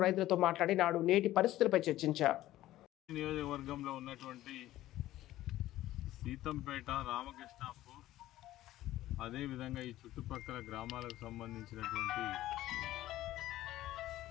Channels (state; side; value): quieter; right; 14.8 dB